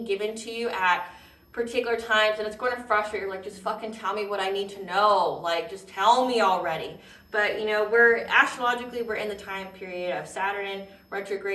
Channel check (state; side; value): identical; both; correlation 1.00